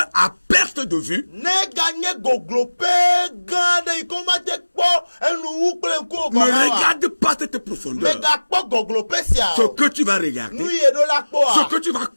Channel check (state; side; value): inverted; both; correlation -1.00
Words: à perte de vue, ne regarde pas cette profondeur. Ce que tu vas regarder, ce que tu vas